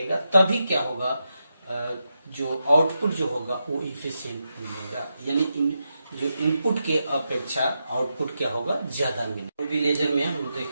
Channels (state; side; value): inverted; both; correlation -0.87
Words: तभी क्या होगा, जो आउटपुट जो होगा वो इफिशिएंट मिलेगा, यानी जो इनपुट के अपेक्षा आउटपुट क्या होगा, ज्यादा मिलेगा। रूबी लेजर में हम लोग